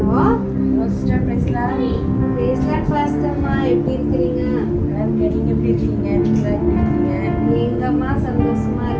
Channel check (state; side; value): identical; both; correlation 1.00